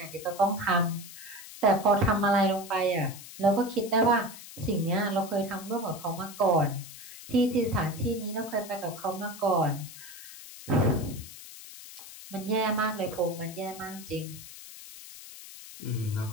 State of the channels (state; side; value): noise; left; hiss, 15 dB below the sound